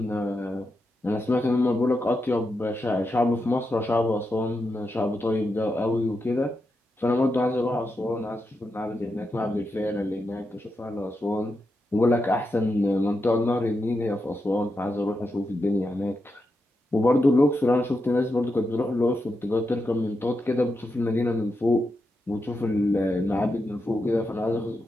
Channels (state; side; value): normal; both; correlation 0.86